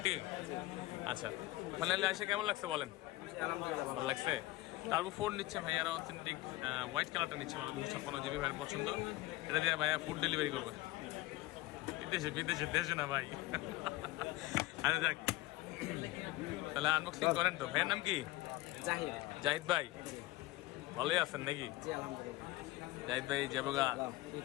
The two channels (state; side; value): quieter; right; 18.1 dB